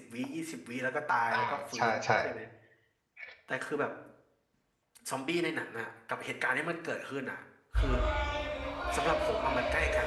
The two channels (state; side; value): identical; both; correlation 1.00